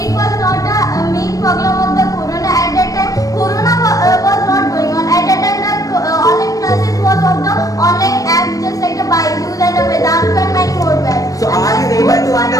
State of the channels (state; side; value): late; right; 0.17 ms